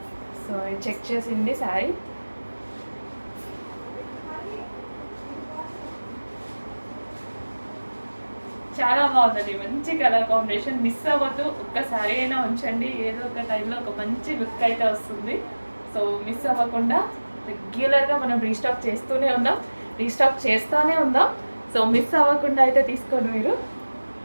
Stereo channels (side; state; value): both; inverted; correlation -1.00